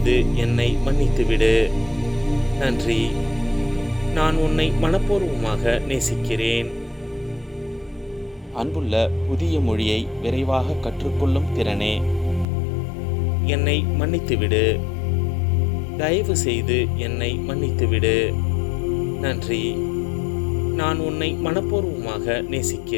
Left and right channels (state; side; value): drops out; right; at 12.5 s